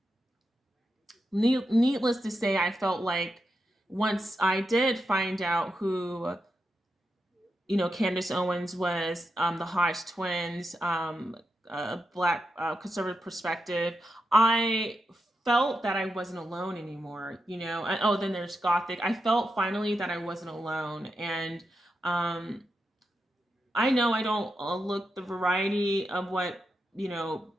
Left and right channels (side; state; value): both; normal; correlation 0.86